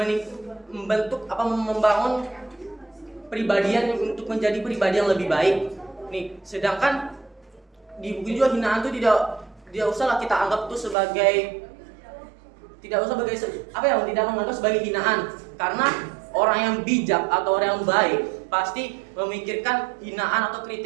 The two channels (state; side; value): drops out; left; at 11.0 s